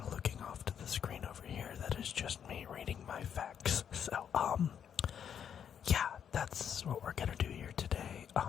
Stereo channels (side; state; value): right; quieter; 8.4 dB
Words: looking off to the screen over here, that is just me reading my facts. So, yeah, that's what we're gonna do here today.